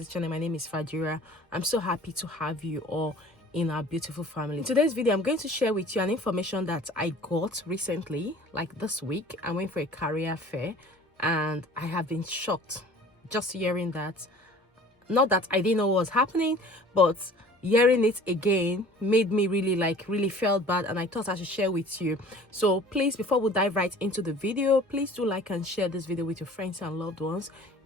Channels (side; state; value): both; normal; correlation 0.48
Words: channel, my name is Fajira. I'm so happy to have you all in our beautiful family. In today's video, I'm going to share with you an information that I got recently, like this week. I went for a career fair and I have been shocked just hearing that. Not that I didn't know what was happening, but hearing it again made me really felt bad, and I thought I should share with you. So please, before we dive right into the video, please do like and share this video with your friends and loved ones.